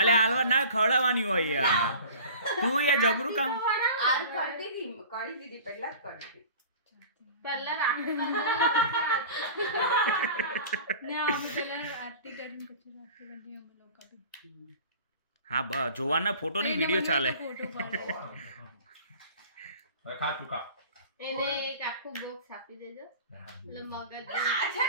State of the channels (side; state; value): both; inverted; correlation -0.41